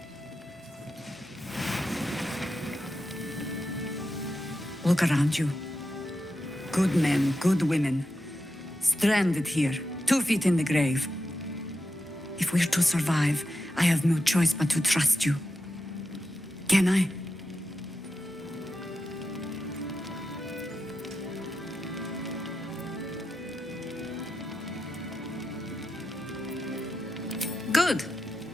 Look around you. Good men, good women. Stranded here, 2 feet in the grave. If we're to survive, I have no choice but to trust you. Can I? Good.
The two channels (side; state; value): both; normal; correlation 0.89